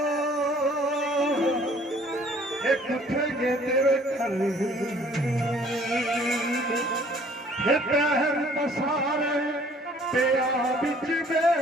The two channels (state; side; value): normal; both; correlation 0.56